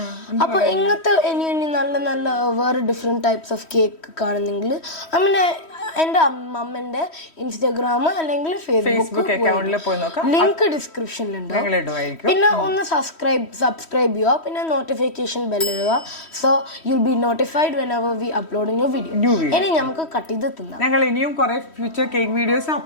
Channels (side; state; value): right; late; 3.1 ms